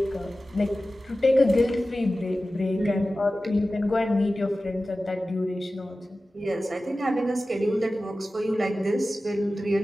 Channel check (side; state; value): both; normal; correlation 0.95